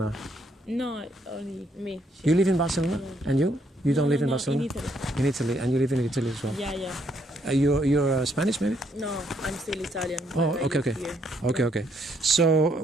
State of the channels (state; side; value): normal; both; correlation 0.72